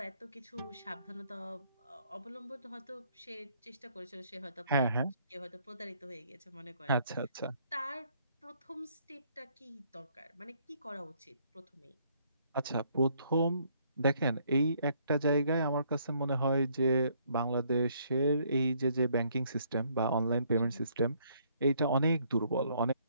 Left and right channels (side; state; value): both; inverted; correlation -0.67